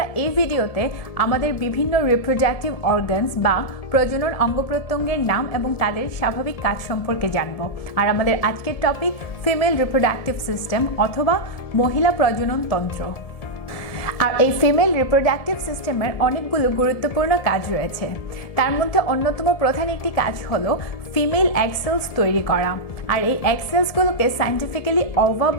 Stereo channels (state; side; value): late; right; 1.7 ms